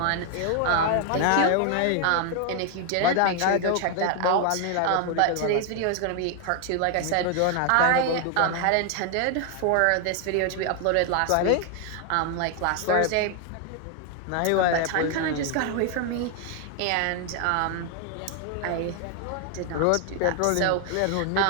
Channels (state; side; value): different; both; correlation 0.00